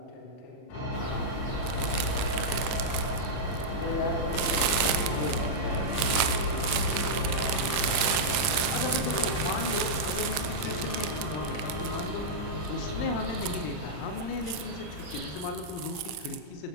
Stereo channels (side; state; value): right; late; 39 ms